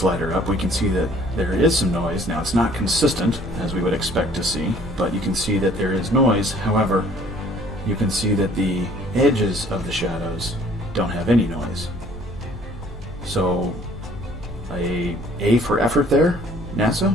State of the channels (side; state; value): both; normal; correlation 0.56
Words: up, we can see that there is some noise. Now it's not consistent as we would expect to see, but you can see that there is noise. However, you can see that the edges of the shadows don't have any noise. So a for effort there,